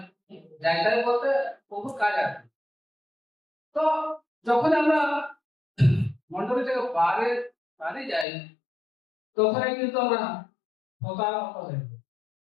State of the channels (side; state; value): right; drops out; at 8.2 s